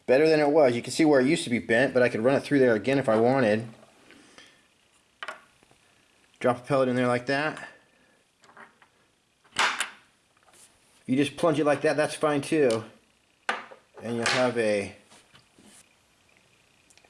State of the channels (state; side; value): identical; both; correlation 1.00